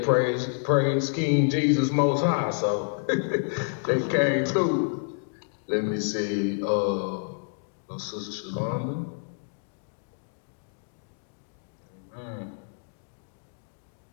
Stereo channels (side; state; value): right; silent; digital silence